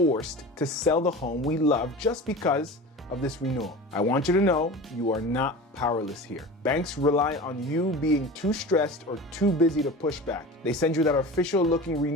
to sell the home we love just because of this renewal? I want you to know you are not powerless here. Banks rely on you being too stressed or too busy to push back. They send you that official looking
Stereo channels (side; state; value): both; normal; correlation 0.34